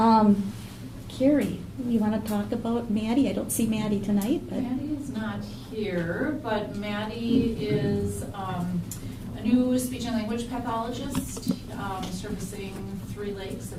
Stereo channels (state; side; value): identical; both; correlation 1.00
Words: Carrie, you want to talk about Maddie? I don't see Maddie tonight, but Maddie is not here, but Maddie is a new speech and language pathologist servicing Three Lakes,